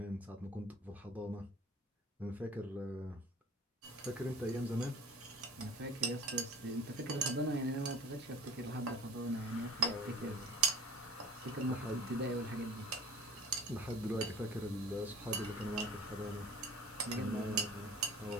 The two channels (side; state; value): both; normal; correlation 0.42